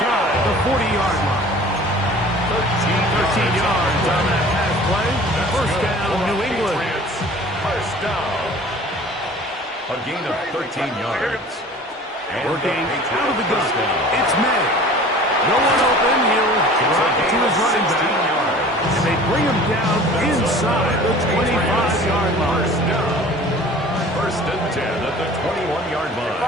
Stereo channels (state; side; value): normal; both; correlation 0.45